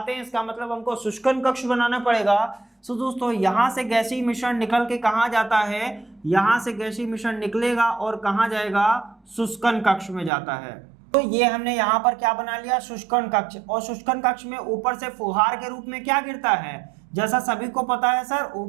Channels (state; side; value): drops out; left; at 10.3 s